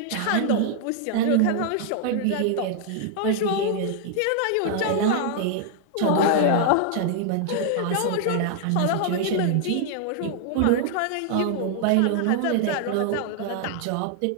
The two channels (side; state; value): both; different; correlation 0.00